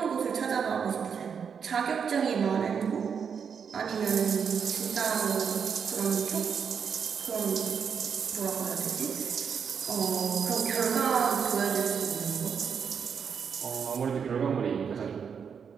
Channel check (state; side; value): quieter; left; 6.8 dB